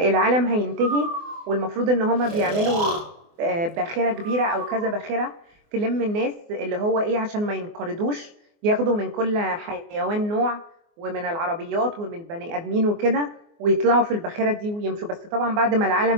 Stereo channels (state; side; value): late; left; 24 ms